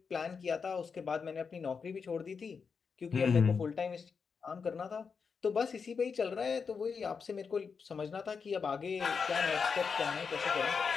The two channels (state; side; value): quieter; right; 5.7 dB